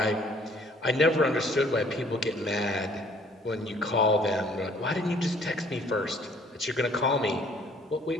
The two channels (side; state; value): both; normal; correlation 0.58